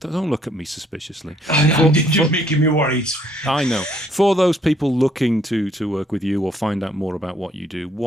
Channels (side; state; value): both; normal; correlation 0.66